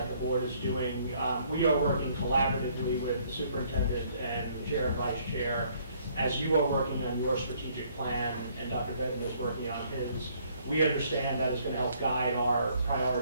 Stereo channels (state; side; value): inverted; both; correlation -0.64